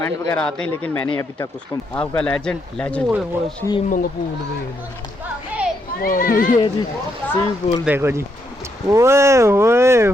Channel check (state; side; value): normal; both; correlation 0.77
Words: वगैरह आते हैं, लेकिन मैंने अभी तक उसको आपका लेजेंड ये जी स्विमिंग पूल देखो जी। ओए होए